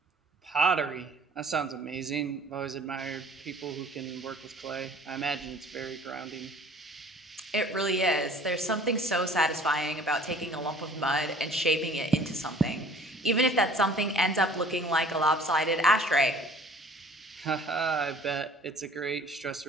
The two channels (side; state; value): both; normal; correlation 0.51